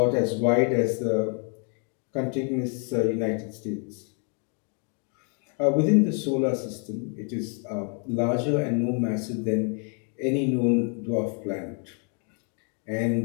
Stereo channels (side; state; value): right; quieter; 39.7 dB